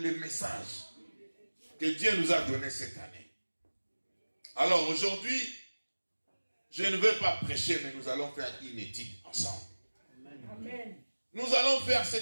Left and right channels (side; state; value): both; inverted; correlation -1.00